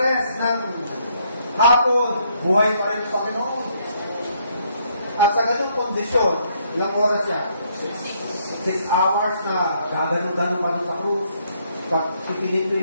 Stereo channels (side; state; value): both; inverted; correlation -0.70